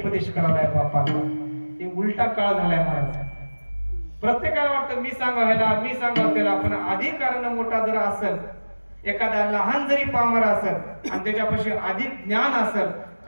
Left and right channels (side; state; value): both; inverted; correlation -1.00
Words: करायला बापाला. हे उलटा काळ झालाय महाराज. प्रत्येकाला वाटतं मी सांगायला मी सांगावं त्याला. पण अधिकारानं मोठा जर असेल एखादा लहान जरी पामर असेल आणि त्याच्यापाशी अधिक ज्ञान असेल,